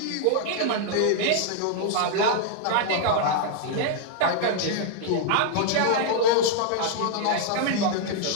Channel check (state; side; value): different; both; correlation -0.01